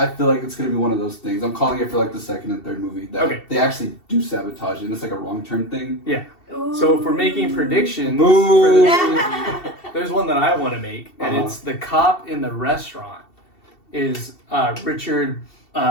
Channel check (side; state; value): right; late; 2.7 ms